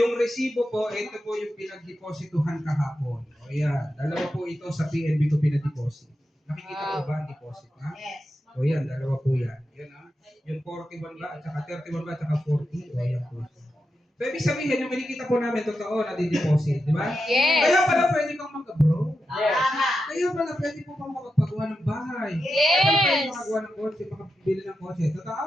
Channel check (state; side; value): normal; both; correlation 0.88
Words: resibo po, ito po yung pinagdeposituhan kahapon. O yan, dalawa po ito sa PNB ko pinag-deposit. Nakikita ko ba ang deposit, ha? Yes. O yan, dalawa po yan. Yan, ha? Yung 41 ba, at saka 31 ba, at saka 40. O yan po. So, ibig sabihin, yung kinikita po namin, totoo na di-deposit, di ba? Yes. Kaya pala pwede kang mag-abroad. Tama. Kaya pala pwede po kang makapagawa ng bahay. Yes. Kaya pala pwede makagawa ng kotse, makabili ng kotse. Totoo?